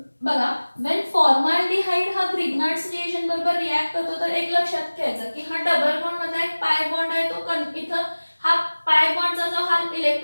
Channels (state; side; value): inverted; both; correlation -1.00